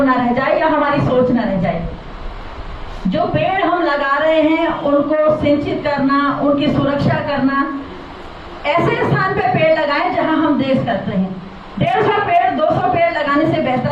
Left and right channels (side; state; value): both; identical; correlation 1.00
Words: न रह जाए या हमारी सोच न रह जाए। जो पेड़ हम लगा रहे हैं उनको सिंचित करना, उनकी सुरक्षा करना, ऐसे स्थान पे पेड़ लगाएं जहां हम देश करते हैं। 150 पेड़ 200 पेड़ लगाने से